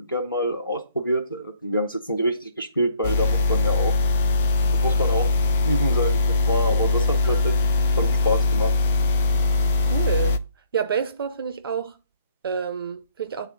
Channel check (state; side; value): inverted; both; correlation -0.65